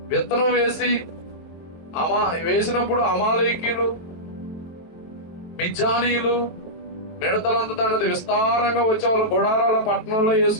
విత్తనం వేసినప్పుడు అమాలేకీయులు, మిజ్జానీయులు మిడతలంత తండ్రి విస్తారంగా వచ్చే వాళ్ళ గుడారాల పట్టణంలో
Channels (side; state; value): right; late; 23 ms